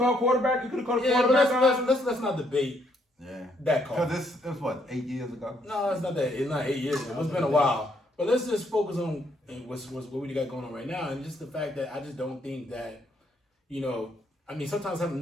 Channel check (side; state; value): both; normal; correlation 0.71